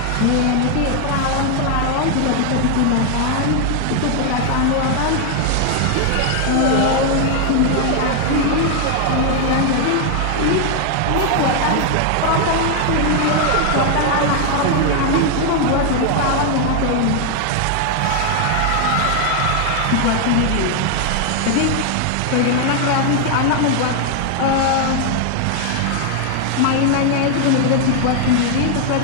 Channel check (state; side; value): different; both; correlation 0.00